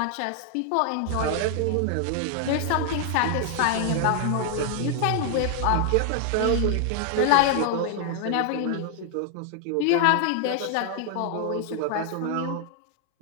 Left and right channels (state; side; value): different; both; correlation 0.00